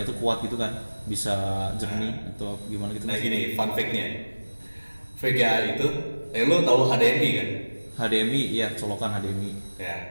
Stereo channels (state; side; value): inverted; both; correlation -1.00